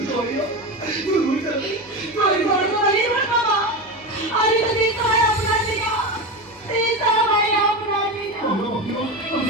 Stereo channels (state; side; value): normal; both; correlation 0.20